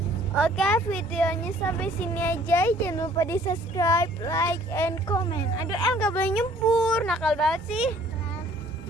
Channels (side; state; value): both; normal; correlation 0.56